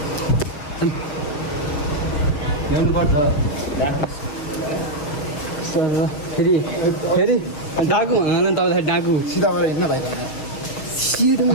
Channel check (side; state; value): right; late; 7.0 ms